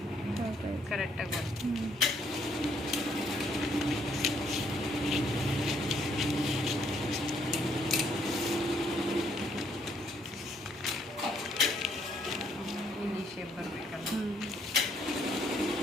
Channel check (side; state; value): both; normal; correlation 0.69